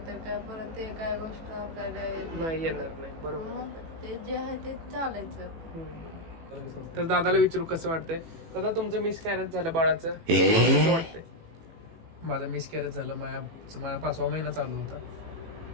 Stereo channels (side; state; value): left; late; 18 ms